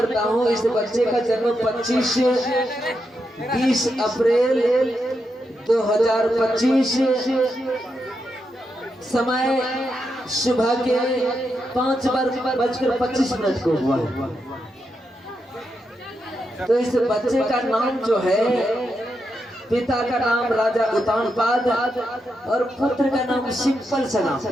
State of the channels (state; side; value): normal; both; correlation 0.84